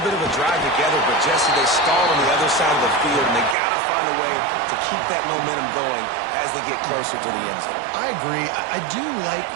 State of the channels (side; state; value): left; drops out; at 3.6 s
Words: bit of a drive together, but Jesse, they stalled on the other side of the field, and they got to find a way to keep that momentum going as they get closer to the end zone. I agree. I do like